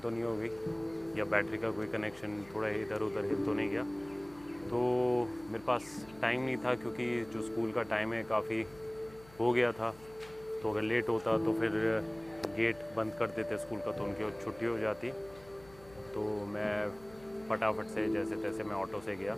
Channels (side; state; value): left; noise; hum, 23 dB below the sound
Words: तो नहीं हो गई या बैटरी का कोई कनेक्शन थोड़ा इधर उधर हिल तो नहीं गया। तो मेरे पास टाइम नहीं था क्योंकि जो स्कूल का टाइम है काफ़ी हो गया था। तो अगर लेट होता तो फिर गेट बंद कर देते स्कूल का, तो उनकी छुट्टी हो जाती। तो मैं फटाफट से जैसे तैसे मैं ऑटो से गया,